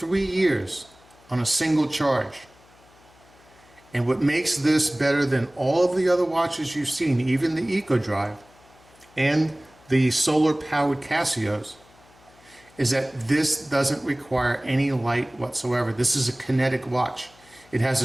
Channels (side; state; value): left; noise; hum, 28 dB below the sound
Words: years on a single charge. And what makes this better than all of the other watches you've seen, even the EcoDrive and the solar-powered Casios, is that this doesn't require any light whatsoever. This is a kinetic watch. It has